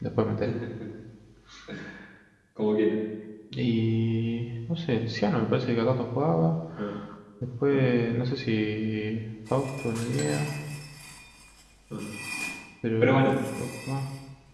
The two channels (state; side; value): identical; both; correlation 1.00